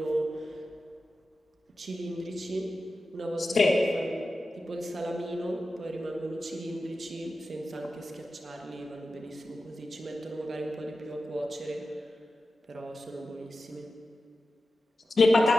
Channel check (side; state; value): both; normal; correlation 0.93